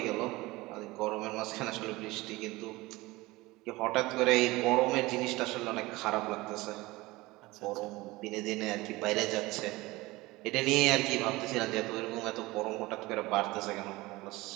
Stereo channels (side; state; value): left; quieter; 20.6 dB